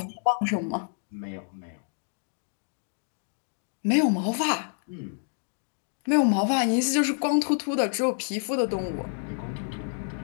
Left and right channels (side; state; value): right; silent; digital silence